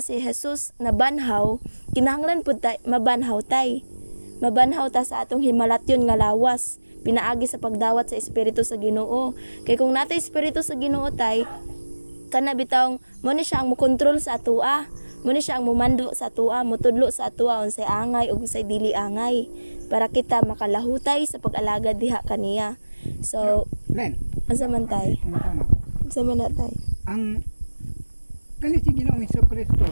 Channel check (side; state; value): both; inverted; correlation -1.00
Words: si Jesus na banhaw, kinahanglan pud ta mabanhaw tay. Mabanhaw ta sa atong himalatyon nga lawas, pinaagi sa pagdawat sa espiritu sa Ginoo. Kay kung natay espiritu sa Ginoo tay, kana bitawng mo ni siya ang mokontrol sa atoa. Mo ni siya ang mumando sa atoa, motudlo sa atoa unsay angay ug unsay dili angay para kita makalahutay sa pag-alagad diha kaniya. So, Len. unsa man tay? Unsa man na tay? Ang kani si Ginoong Hesukristo